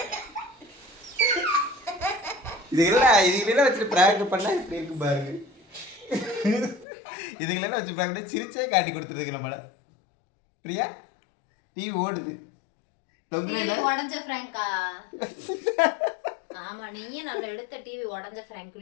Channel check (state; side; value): drops out; right; at 6.9 s